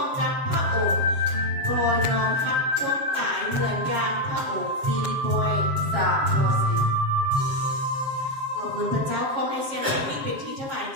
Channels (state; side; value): late; left; 7.4 ms